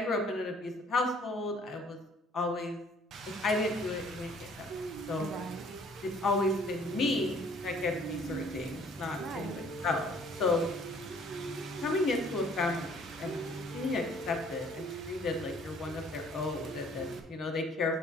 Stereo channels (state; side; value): normal; both; correlation 0.58